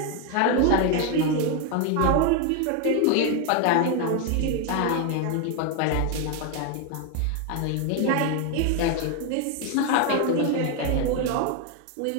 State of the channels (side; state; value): both; different; correlation 0.01